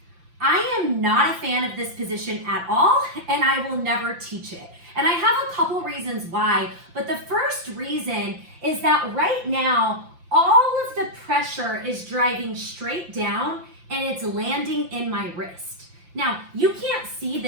I am not a fan of this position at all, and I will never teach it. And I have a couple reasons why, but the first reason is that right now, all of the pressure is driving straight down and it's landing in my wrist. Now, you can't see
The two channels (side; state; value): left; late; 5.8 ms